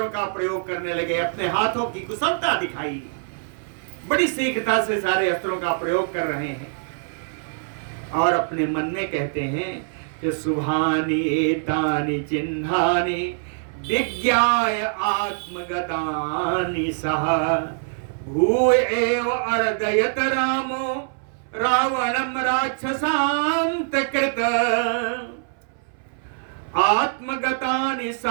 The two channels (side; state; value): left; silent; 60 dB below the other